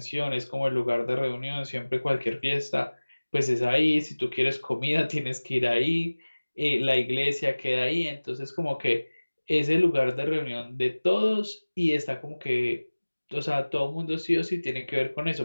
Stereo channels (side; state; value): both; inverted; correlation -1.00